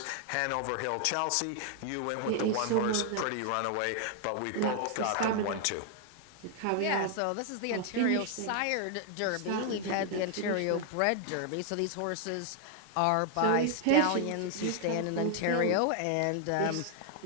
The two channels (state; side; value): different; both; correlation 0.00